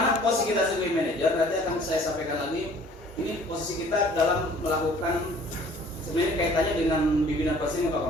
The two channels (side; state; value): both; normal; correlation 0.53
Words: posisi kita sebagai manajer? Nanti akan saya sampaikan lagi. Ini posisi kita dalam melakukan sebenarnya kaitannya dengan bimbingan posisi Pak